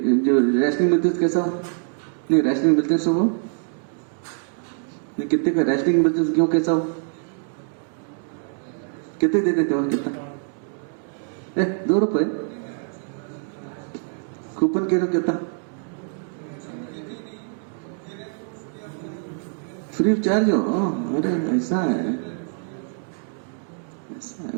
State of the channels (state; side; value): silent; left; 56 dB below the other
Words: جو ریشننگ ملتے ہیں کیسا ہو نہیں ریشننگ ملتے ہیں سب وہ نہیں کتنے کا ریشننگ ملتے ہیں گیہوں کیسا ہو کتنے دے دیتے ہو کتنا 2 روپے کوپن کے کتنا فری آف چارج ہو. ارے ایسا ہے